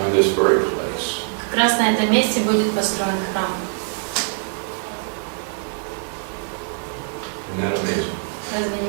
this very place. Как раз на этом месте будет построен храм. Isn't that amazing? Разве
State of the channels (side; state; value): left; silent; 57 dB below the other